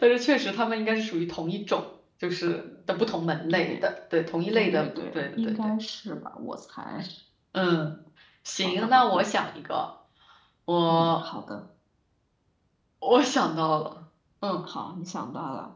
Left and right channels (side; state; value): both; identical; correlation 1.00